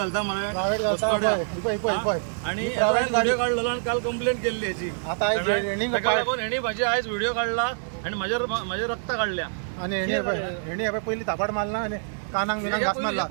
मला प्रायव्हेट घालता आणि प्रायव्हेट गाडी काढलेलो आणि काल कंप्लेंट केली याची आता हेणी माझी आयज व्हिडिओ काढला आणि माझ्या रक्त काढल्या आणि हेणी पहिली थापाड मारला आणि कानांग बिनांग घास मारला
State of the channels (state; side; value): silent; left; digital silence